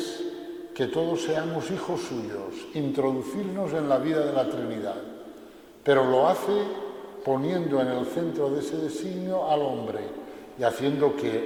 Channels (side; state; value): both; identical; correlation 1.00